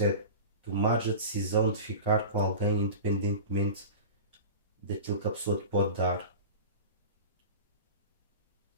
é tomares a decisão de ficar com alguém independentemente daquilo que a pessoa te pode dar.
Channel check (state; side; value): inverted; both; correlation -0.32